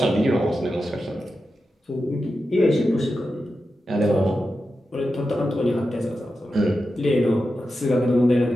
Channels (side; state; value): both; normal; correlation 0.90